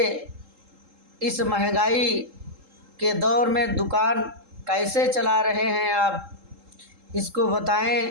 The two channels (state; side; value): late; left; 3.7 ms